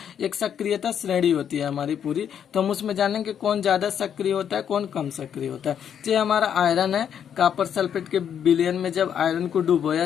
एक सक्रियता श्रेणी होती है हमारी पूरी, तो हम उसमें जानेंगे कौन ज्यादा सक्रिय होता है, कौन कम सक्रिय होता है। तो ये हमारा आयरन है, कॉपर सल्फेट के विलयन में जब आयरन को डुबोया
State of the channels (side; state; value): right; quieter; 8.6 dB